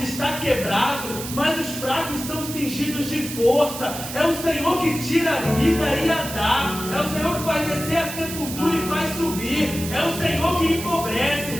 está quebrado, mas os fracos são cingidos de força. É o Senhor que tira a vida e a dá. É o Senhor que vai descer a sepultura e faz subir. É o Senhor que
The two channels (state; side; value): noise; right; hiss, 9 dB below the sound